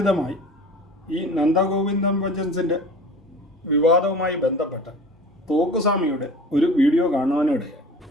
ഈ നന്ദഗോവിന്ദൻ ഭജൻസിൻ്റെ വിവാദവുമായി ബന്ധപ്പെട്ട തോക്കുസ്വാമിയുടെ ഒരു വീഡിയോ കാണുവാനിടയായി.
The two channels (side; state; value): both; normal; correlation 0.40